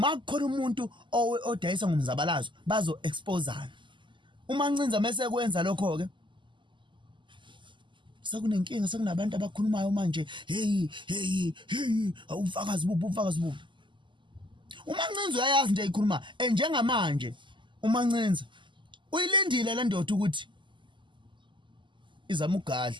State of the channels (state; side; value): late; left; 0.24 ms